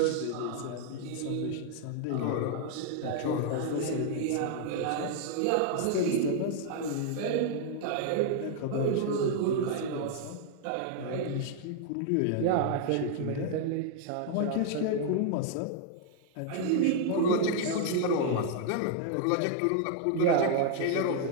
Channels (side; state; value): both; different; correlation 0.00